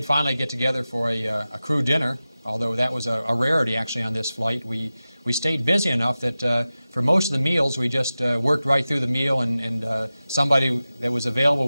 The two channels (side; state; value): both; inverted; correlation -0.95